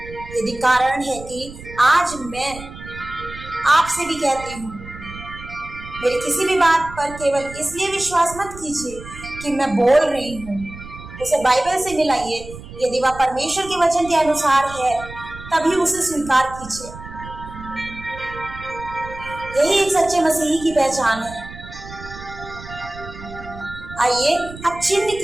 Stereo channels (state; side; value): noise; right; rumble, 15 dB below the sound